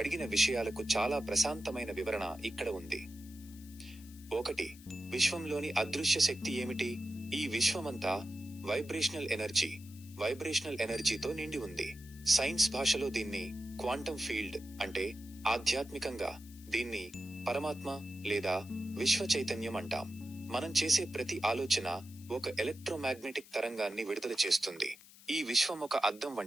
విషయాలకు చాలా ప్రశాంతమైన వివరణ ఇక్కడ ఉంది. 1. విశ్వంలోని అదృశ్య శక్తి ఏమిటి? ఈ విశ్వమంతా వైబ్రేషనల్ ఎనర్జీతో నిండి ఉంది. సైన్స్ భాషలో దీన్ని క్వాంటం ఫీల్డ్ అంటే ఆధ్యాత్మికంగా దీన్ని పరమాత్మ లేదా విశ్వ చైతన్యం అంటాం. మనం చేసే ప్రతి ఆలోచన ఒక ఎలక్ట్రోమాగ్నెటిక్ తరంగాన్ని విడుదల చేస్తుంది. ఈ విశ్వం ఒక అద్దం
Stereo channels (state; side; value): noise; left; hiss, 21 dB below the sound